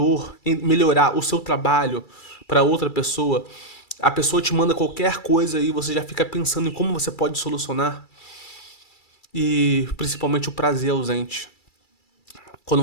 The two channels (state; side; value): late; right; 2.3 ms